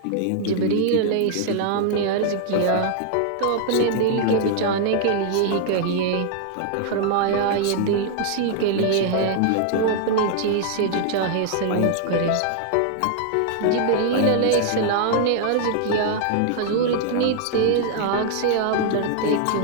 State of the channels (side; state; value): both; different; correlation 0.00